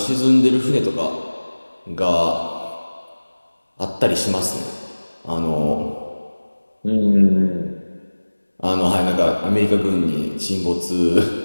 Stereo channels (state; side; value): inverted; both; correlation -1.00